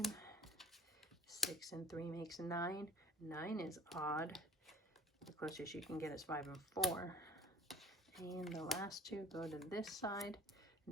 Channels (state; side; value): normal; both; correlation 0.50